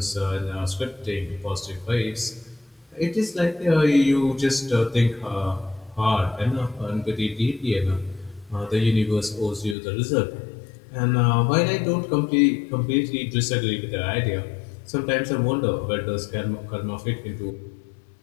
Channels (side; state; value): right; drops out; at 9.8 s